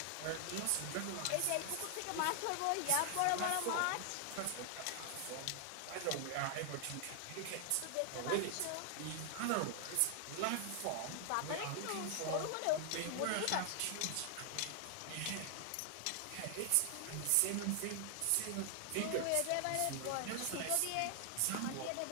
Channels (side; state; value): both; different; correlation 0.00